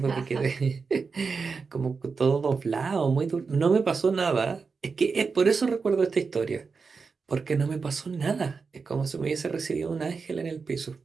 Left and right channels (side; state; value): left; quieter; 4.9 dB